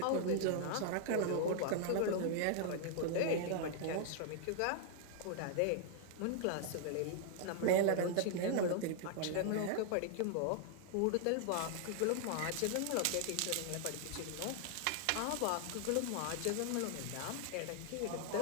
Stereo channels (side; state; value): both; different; correlation 0.00